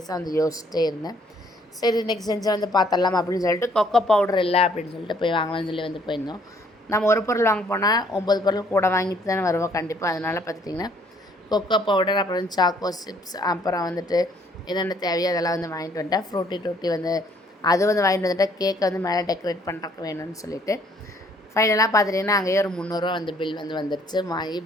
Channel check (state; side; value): normal; both; correlation 0.63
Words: வந்து யோசிச்சிட்டே இருந்தேன். சரி இன்றைக்கி செஞ்சு வந்து பார்த்துடலாம் அப்படின்னு சொல்லிட்டு கொக்கோ பவுடர் இல்லை அப்படின்னு சொல்லிட்டு போய் வாங்கலாம்னு சொல்லி வந்து போயிருந்தோம். நம்ம ஒரு பொருள் வாங்க போனால் 9 பொருள் கூட வாங்கிட்டு தானே வருவோம் கண்டிப்பாக. அதனால் பார்த்துட்டிங்கன்னா கொக்கோ பவுடர் அப்புறம் சாக்கோ சிப்ஸ் அப்புறம் வந்துட்டு என்னென்ன தேவையோ அதெல்லாம் வந்து வாங்கிட்டு வந்துட்டேன். ஃப்ரூட்டி டூட்டி வந்து அது வந்து வாங்கிட்டு வந்துட்டேன். கேக்கை வந்து மேலே டெக்கரேட் பண்ணுறக்கு வேணும்னு சொல்லிவிட்டு ஃபைனலாக பார்த்துட்டிங்கன்னா அங்கேயே ஒரு 300 ரூபா வந்து பில் வந்து வந்துடுச்சு. வாங்கி